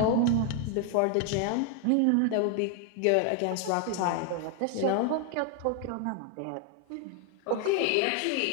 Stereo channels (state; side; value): different; both; correlation 0.01